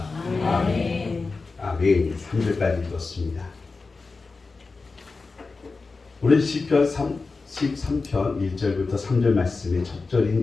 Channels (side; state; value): right; quieter; 4.1 dB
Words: 아멘. 아멘. 3절까지 읽었습니다. 오늘 시편 13편 1절부터 3절 말씀의 첫